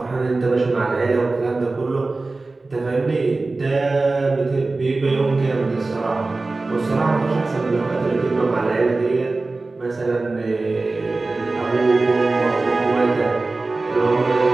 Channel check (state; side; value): quieter; left; 3.4 dB